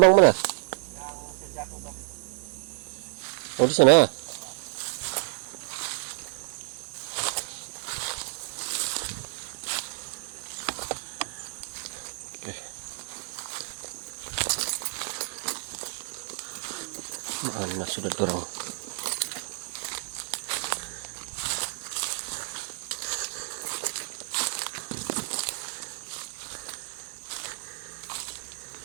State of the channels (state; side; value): silent; left; digital silence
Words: mana? Oh di sana. Oke. Mana sudah dorong?